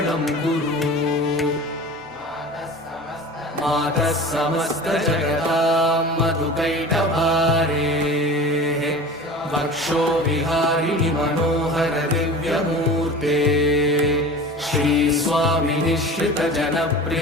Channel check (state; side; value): normal; both; correlation 0.37